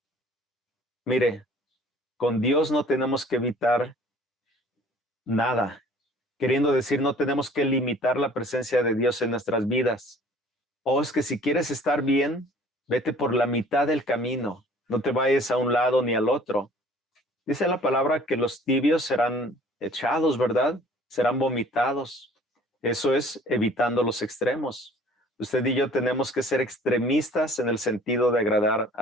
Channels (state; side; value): normal; both; correlation 0.52